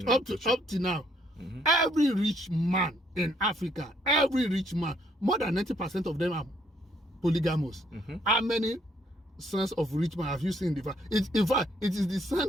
up to now. Every rich man in Africa, every rich man, more than 90% of them are polygamous. How many sons of rich men have you seen in the farm? In fact, it is the son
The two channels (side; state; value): both; normal; correlation 0.69